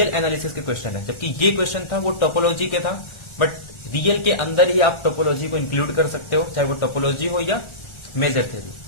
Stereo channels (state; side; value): late; right; 1.4 ms